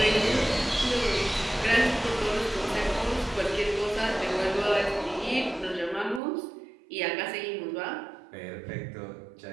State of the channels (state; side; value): drops out; left; at 6.2 s